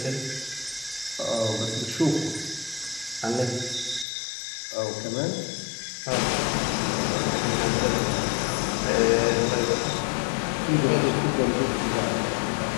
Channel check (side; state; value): right; drops out; at 4.0 s